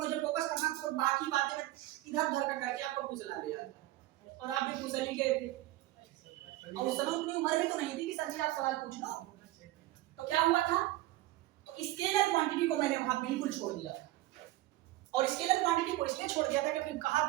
फोकस करना था, तो बाकी बातें मैं इधर उधर का करके आपको फुसला लिया था, और आप भी फुसल ही गए थे, और उस समय उतनी उम्र में तो नहीं थी कि सर जी आप सवाल पूछ लो। तो क्या हुआ था, तो स्केलर क्वांटिटी को मैंने वहां बिल्कुल छोड़ दिया था, और स्केलर क्वांटिटी को इसलिए छोड़ दिया था क्योंकि कहा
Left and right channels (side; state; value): left; quieter; 16.9 dB